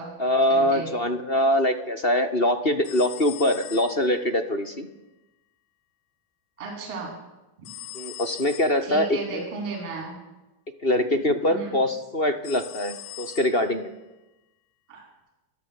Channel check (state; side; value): late; right; 2.7 ms